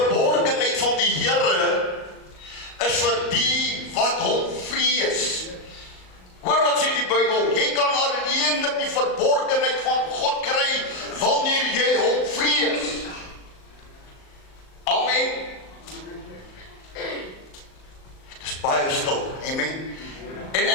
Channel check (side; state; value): right; late; 38 ms